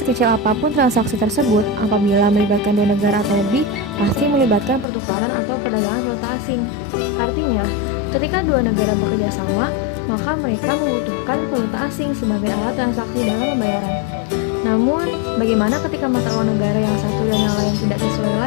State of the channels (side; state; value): right; drops out; at 4.9 s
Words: apapun transaksi tersebut, apabila melibatkan dua negara atau lebih, pasti melibatkan pertukaran atau perdagangan valuta asing. Artinya, ketika dua negara bekerja sama, maka mereka membutuhkan valuta asing sebagai alat transaksi dalam pembayaran. Namun, bagaimana ketika mata uang negara yang satu dan yang lain tidak sesuai